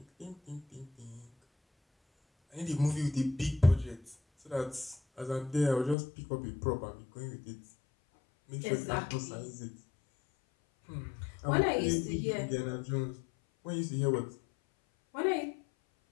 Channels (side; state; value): right; drops out; at 6.0 s